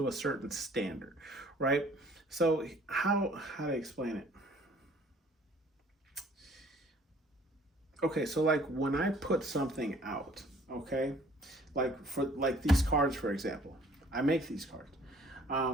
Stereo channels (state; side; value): normal; both; correlation 0.56